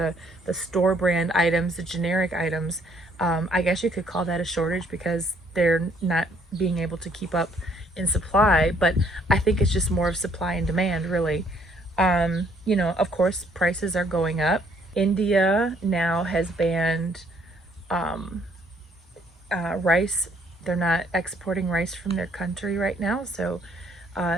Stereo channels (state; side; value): normal; both; correlation 0.65